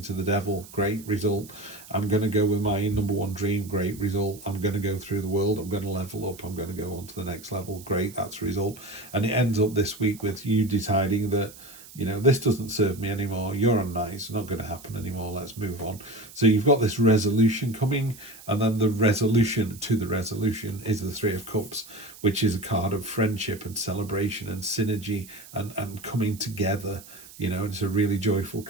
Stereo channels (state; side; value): noise; right; hiss, 19 dB below the sound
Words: to the devil. Great result. I'm going to go with my number one dream. Great result. I'm going to go through the world. I'm going to level up. I'm going to go on to the next level. Great. That's a result. And it ends up this week with you deciding that, you know, this doesn't serve me anymore. You're unnice. It's not going to happen anymore. Let's move on. So you've got this resolution coming, and then the resolution to the resolution is the Three of Cups, which is a card of friendship and celebration and synergy and coming together. You know, it's a really joyful